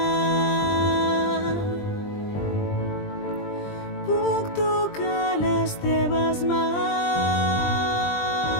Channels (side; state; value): right; late; 20 ms